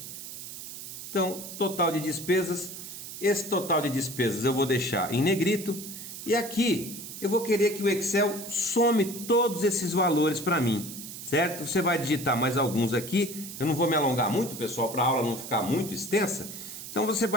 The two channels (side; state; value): right; noise; hiss, 10 dB below the sound